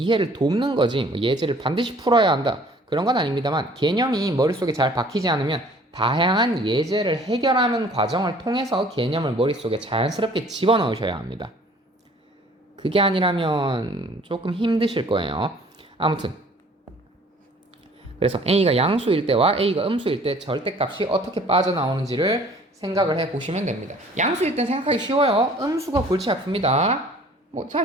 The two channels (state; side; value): normal; both; correlation 0.53